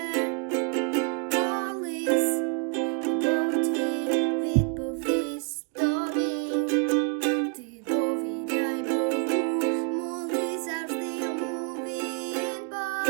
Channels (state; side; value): quieter; left; 34.5 dB